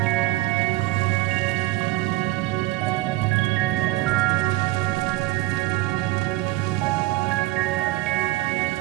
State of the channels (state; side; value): quieter; left; 18.3 dB